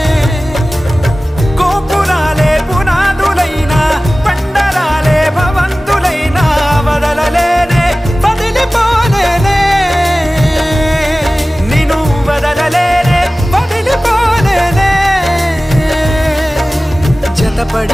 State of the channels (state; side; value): normal; both; correlation 0.97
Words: గోపురాలే పునాదులైనా పండరాలే భవంతులైనా వదలలేనే వదిలిపోలేనే నిన్ను వదలలేనే వదిలిపోలేనే